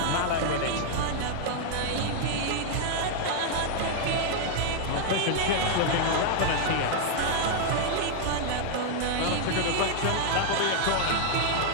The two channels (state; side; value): different; both; correlation 0.00